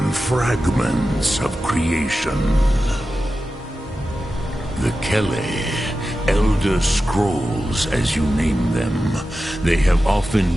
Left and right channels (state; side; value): normal; both; correlation 0.92